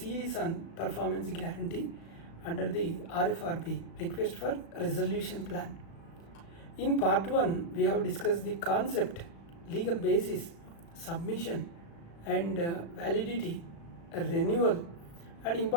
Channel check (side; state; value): right; late; 36 ms